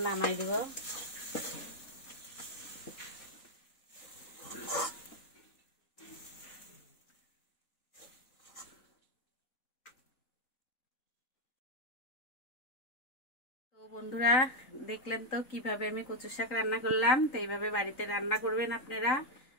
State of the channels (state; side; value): late; right; 3.9 ms